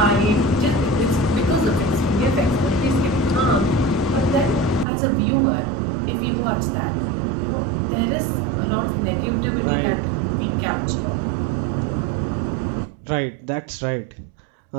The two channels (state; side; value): drops out; left; at 4.9 s